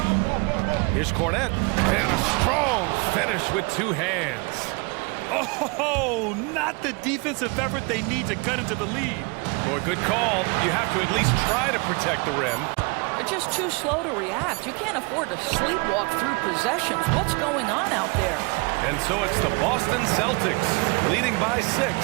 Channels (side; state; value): left; quieter; 29.9 dB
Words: Here's Cornette. And a strong finish with 2 hands. Oh, not the defensive effort they need to cut into the lead. Boy, good call. You have to at least try to protect the rim. They're just too slow to react. You can't afford to sleepwalk through possessions. What's going on out there? And so it's the Boston Celtics leading by 6